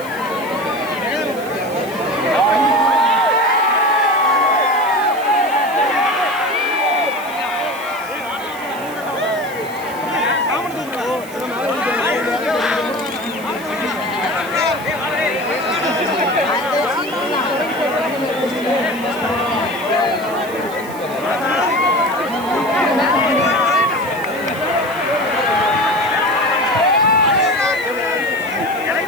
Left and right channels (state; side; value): noise; right; hiss, 18 dB below the sound